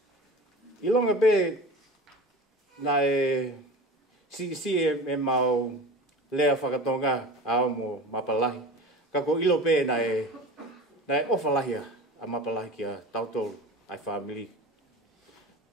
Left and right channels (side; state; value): both; normal; correlation 0.34